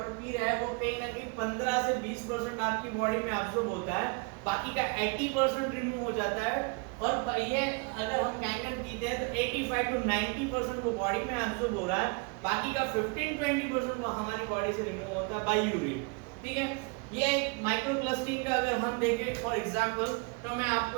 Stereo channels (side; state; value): left; quieter; 31.8 dB